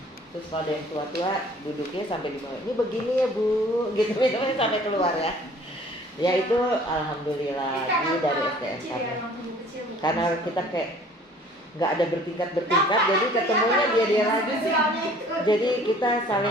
Terus kalau ada yang tua-tua duduknya sampai di bawah, ini begini ya Bu, gitu sampai keluar ya. Ya itu alhamdulillah ini dari SDM kami. Karena kita kayak nggak ada bertingkat-bertingkat, jadi ketemunya dia lagi. Jadi kita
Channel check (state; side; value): normal; both; correlation 0.52